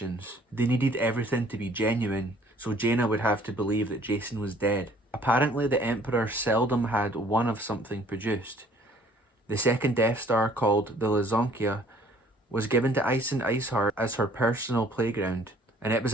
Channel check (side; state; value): both; normal; correlation 0.57